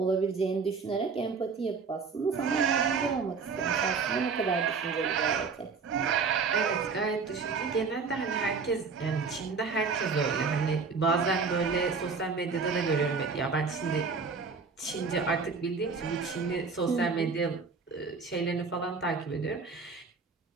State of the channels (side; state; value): left; quieter; 5.0 dB